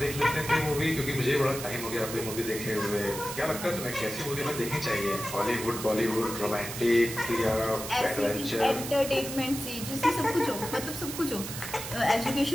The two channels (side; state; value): right; noise; hiss, 8 dB below the sound